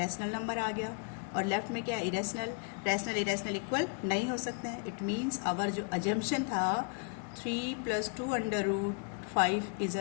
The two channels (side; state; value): right; quieter; 37.5 dB